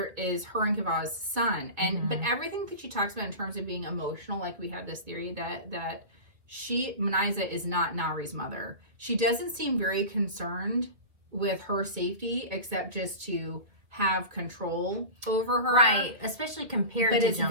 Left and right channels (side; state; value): left; late; 2.4 ms